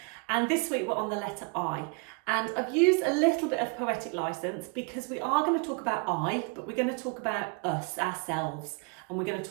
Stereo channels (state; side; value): quieter; left; 32.1 dB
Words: And this week we're on the letter I. And I've used a little bit of poetic license because we are going to talk about I, but we're going to talk about us, ourselves, and we're going to